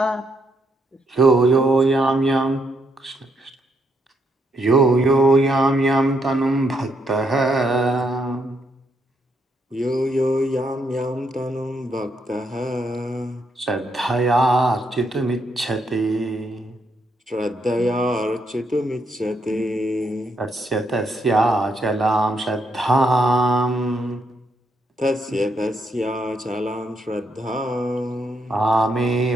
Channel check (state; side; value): normal; both; correlation 0.77